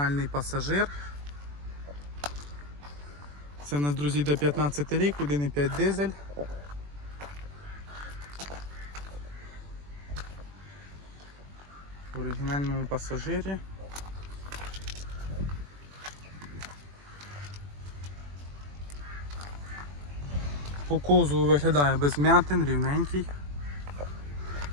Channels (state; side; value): late; left; 21 ms